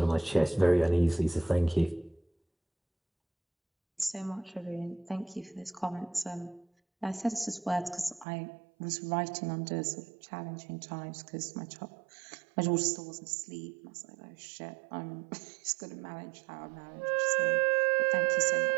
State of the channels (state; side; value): drops out; left; at 8.2 s